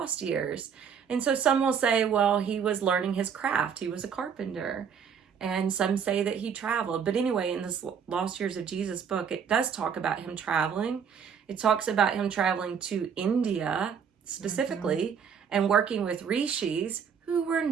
years? And so some will say, well, he was learning his craft. He was a carpenter. And some say that he traveled. But anyway, in this Lost Years of Jesus book, it does talk about him traveling. It talks about him traveling to India specifically and working with rishis who were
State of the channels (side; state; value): left; quieter; 7.1 dB